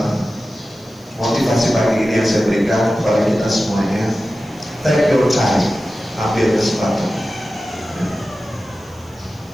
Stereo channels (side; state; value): right; noise; hiss, 30 dB below the sound